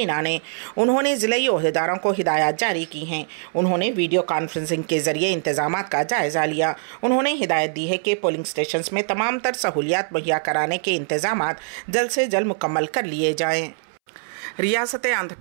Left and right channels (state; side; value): silent; left; 64 dB below the other